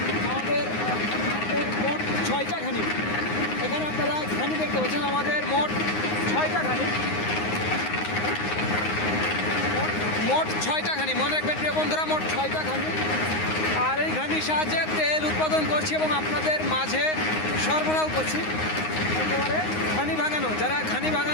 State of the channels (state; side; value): late; right; 9.6 ms